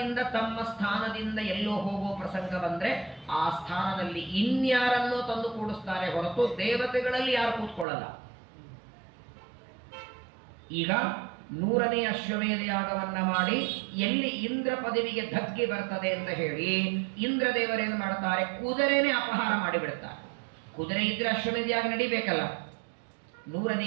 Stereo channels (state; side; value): drops out; left; at 7.9 s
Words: ತಮ್ಮ ಸ್ಥಾನದಿಂದ ಎಲ್ಲೋ ಹೋಗುವ ಪ್ರಸಂಗ ಬಂದ್ರೆ ಆ ಸ್ಥಾನದಲ್ಲಿ ಇನ್ಯಾರನ್ನೋ ತಂದು ಕೂಡಿಸ್ತಾರೆ ಹೊರತು ದೇವತೆಗಳಲ್ಲಿ ಯಾರು ಕೂತ್ಕೊಳ್ಳಲ್ಲ. ಈಗ 100ನೇ ಅಶ್ವಮೇಧ ಯಾಗವನ್ನ ಮಾಡಿ ಎಲ್ಲಿ ಇಂದ್ರ ಪದವಿಗೆ ಧಕ್ಕೆ ಬರ್ತದೆ ಅಂತ ಹೇಳಿ ಇಂದ್ರದೇವರೇನು ಮಾಡ್ತಾರೆ, ಕುದುರೆನೇ ಅಪಹಾರ ಮಾಡಿಬಿಡ್ತಾರೆ. ಕುದುರೆ ಇದ್ರೆ ಅಶ್ವಮೇಧ ಯಾಗ ನಡಿಬೇಕಲ್ಲ. 100ನೇ